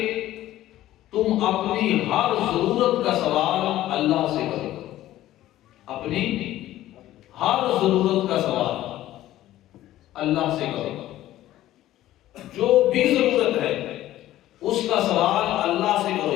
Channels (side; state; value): right; quieter; 14.3 dB